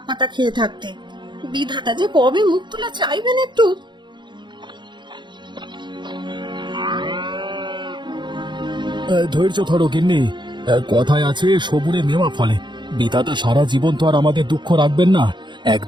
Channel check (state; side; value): late; left; 0.22 ms